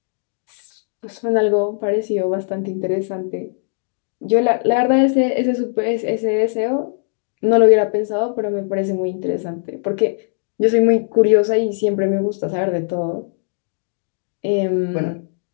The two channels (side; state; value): right; silent; digital silence